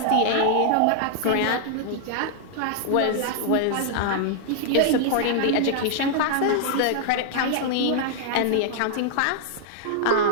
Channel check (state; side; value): different; both; correlation -0.01